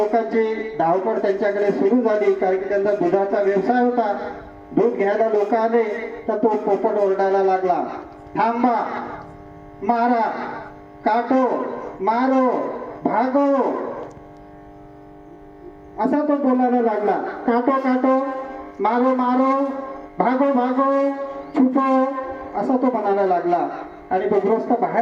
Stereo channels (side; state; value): both; identical; correlation 1.00